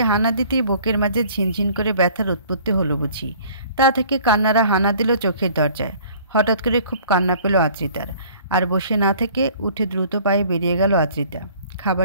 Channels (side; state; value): both; inverted; correlation -0.52